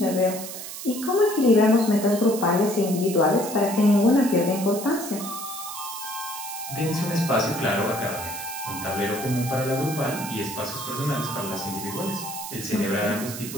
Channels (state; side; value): noise; right; hiss, 9 dB below the sound